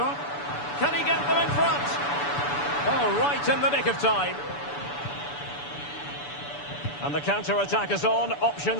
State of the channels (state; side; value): late; right; 6.9 ms